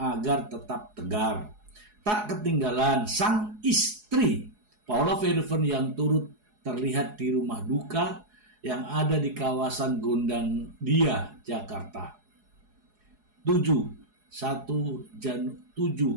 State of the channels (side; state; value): left; late; 4.8 ms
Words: tetap tegar. Tak ketinggalan sang istri, Paula Verhoeven, yang turut terlihat di rumah duka yang ada di kawasan Gondang Dia, Jakarta. 7